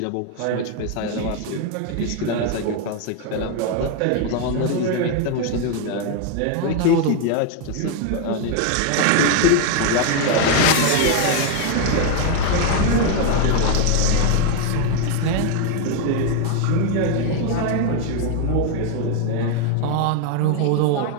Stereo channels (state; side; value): different; both; correlation 0.01